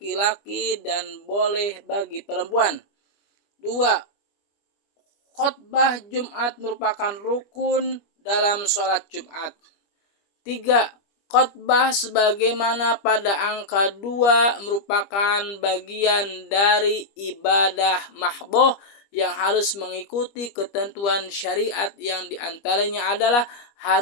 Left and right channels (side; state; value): right; late; 25 ms